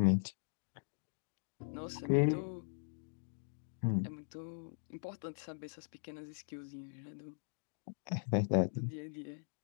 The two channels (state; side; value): silent; right; digital silence